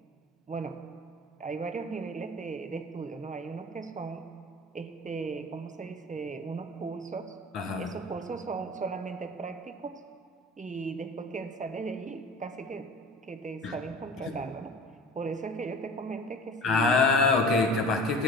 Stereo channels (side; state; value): both; normal; correlation 0.40